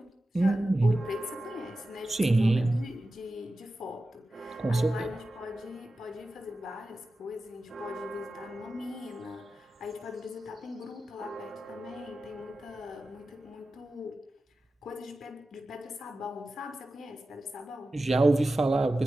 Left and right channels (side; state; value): both; normal; correlation 0.93